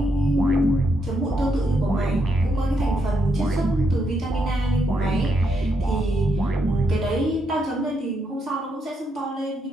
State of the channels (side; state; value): both; normal; correlation 0.79